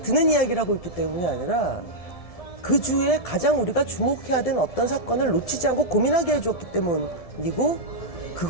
이야기를 하고 있기 때문이 아니라 그 주에 가장 우리가 주목해야 되는 어떤 사건을 놓치지 않고 고민하게 해주었기 때문이고,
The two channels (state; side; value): late; right; 1.7 ms